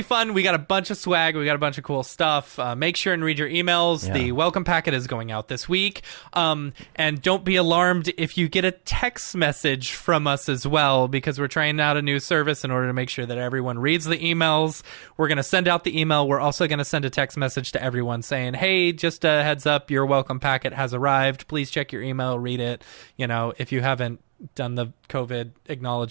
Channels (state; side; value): silent; left; digital silence